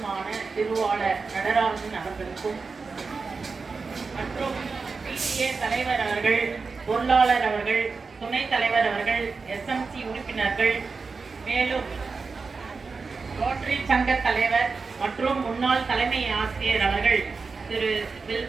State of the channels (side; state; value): left; quieter; 4.5 dB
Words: திருவாளர் நடராஜன் அவர்களுக்கும் மற்றும் பிடிஏ தலைவர் அவர்கள், பொருளாளர் அவர்கள், துணைத் தலைவர் அவர்கள், SMC உறுப்பினர்கள், மேலும் ரோட்டரி சங்க தலைவர் மற்றும் முன்னாள் தலைமை ஆசிரியர் அவர்கள் திரு